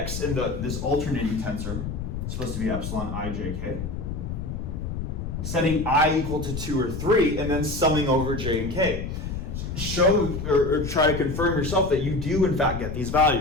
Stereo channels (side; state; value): left; noise; rumble, 5 dB below the sound